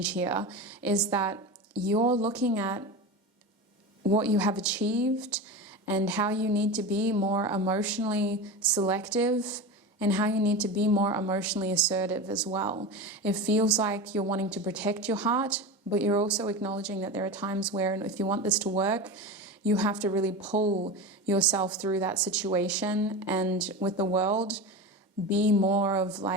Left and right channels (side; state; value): both; normal; correlation 0.25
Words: here is that you're looking at what you have achieved and how you need to be more emotionally selective and how you need to be more emotionally assertive as well. It feels like you're wanting to protect your heart, but you're also acknowledging that there are times where if you want this to work, you have to really pull yourself through that situation, and with the world, be more of